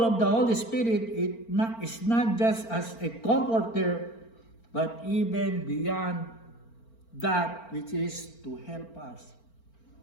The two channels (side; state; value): right; late; 4.4 ms